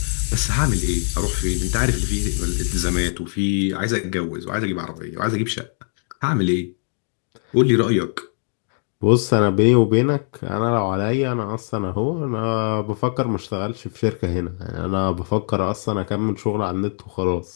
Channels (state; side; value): silent; right; 59 dB below the other